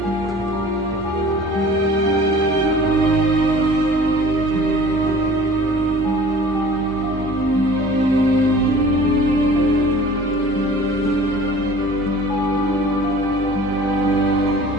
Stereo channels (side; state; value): both; normal; correlation 0.46